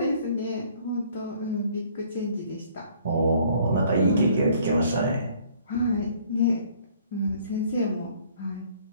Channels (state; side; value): inverted; both; correlation -0.59